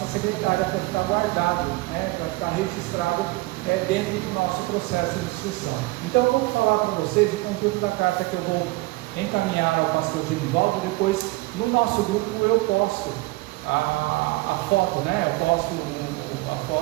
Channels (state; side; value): quieter; left; 21.9 dB